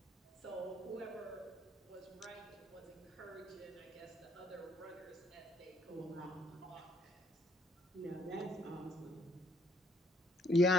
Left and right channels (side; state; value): both; normal; correlation 0.65